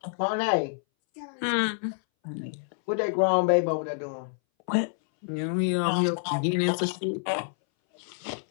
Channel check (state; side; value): silent; right; 60 dB below the other